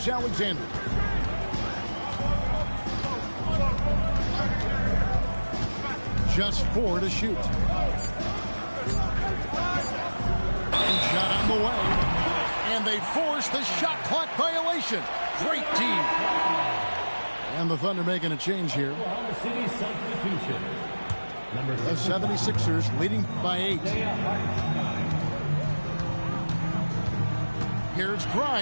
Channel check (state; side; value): inverted; both; correlation -1.00